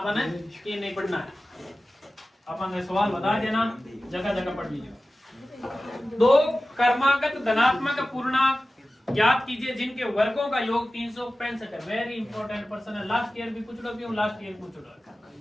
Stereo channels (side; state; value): both; normal; correlation 0.96